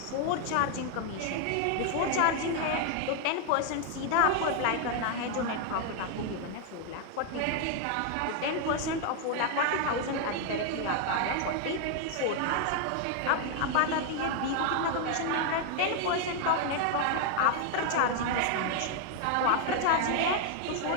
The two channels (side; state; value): both; different; correlation 0.00